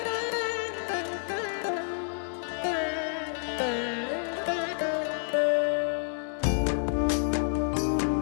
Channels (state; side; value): silent; right; digital silence